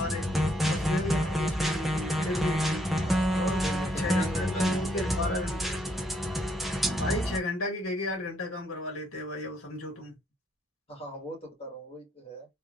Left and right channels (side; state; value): both; normal; correlation 0.72